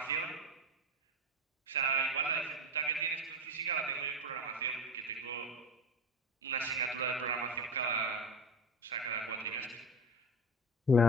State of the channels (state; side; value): normal; both; correlation 0.24